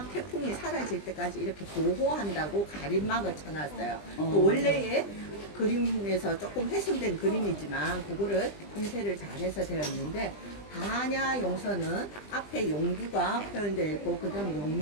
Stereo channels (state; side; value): late; right; 20 ms